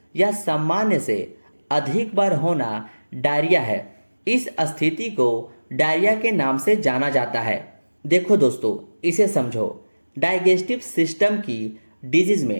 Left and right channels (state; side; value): inverted; both; correlation -1.00